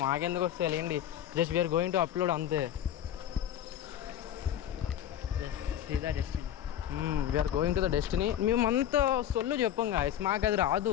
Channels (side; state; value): right; quieter; 10.7 dB